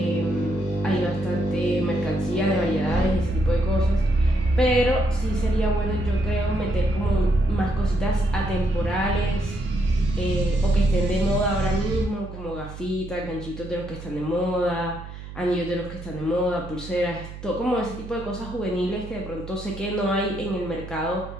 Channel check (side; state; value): right; noise; hum, 12 dB below the sound